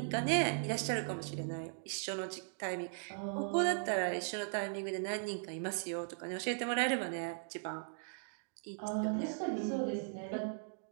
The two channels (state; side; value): silent; left; digital silence